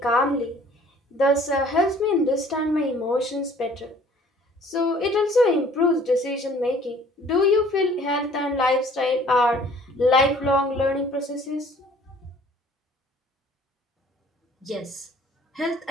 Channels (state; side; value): normal; both; correlation 0.54